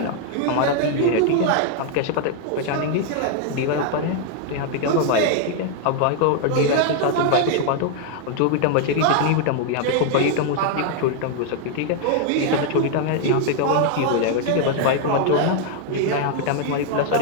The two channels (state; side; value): different; both; correlation 0.00